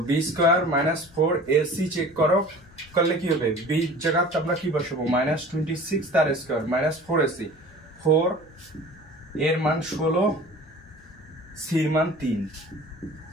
b square minus 4ac check করো, করলে কি হবে, b জায়গায় আমরা কি বসাবো, মাইনাস 26 তার স্কয়ার মাইনাস 4ac, 4 এর মান 16, c এর মান 3,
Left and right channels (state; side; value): normal; both; correlation 0.42